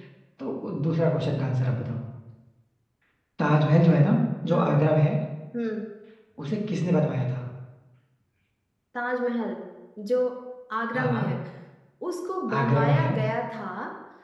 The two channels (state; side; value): identical; both; correlation 1.00